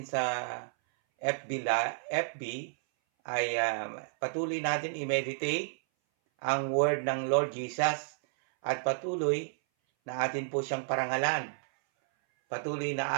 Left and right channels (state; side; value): silent; left; 57 dB below the other